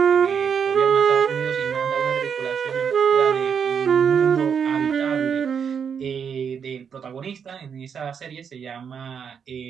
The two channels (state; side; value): quieter; left; 7.1 dB